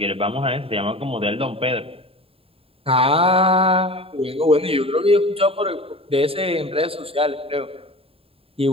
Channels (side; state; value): left; late; 0.27 ms